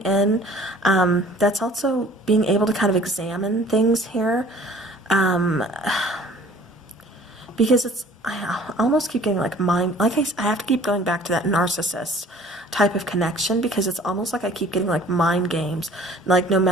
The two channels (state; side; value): normal; both; correlation 0.51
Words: That's also being able to kind of examine things here. Because it's, I almost keep getting like mind, like I have to keep going back to that narcissist type of connection, because it's almost like I keep getting like mind games. Like no